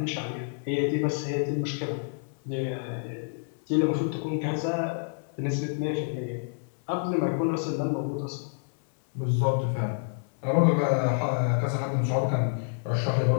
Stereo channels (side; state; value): right; silent; digital silence